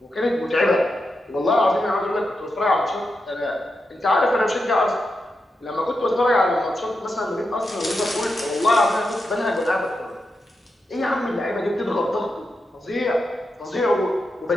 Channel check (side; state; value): both; normal; correlation 0.87